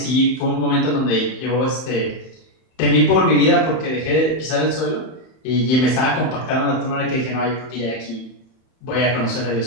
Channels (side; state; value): right; late; 31 ms